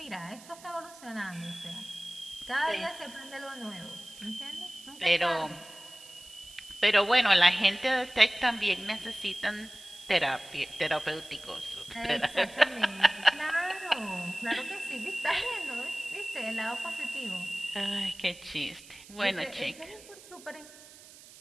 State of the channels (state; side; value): noise; right; hiss, 19 dB below the sound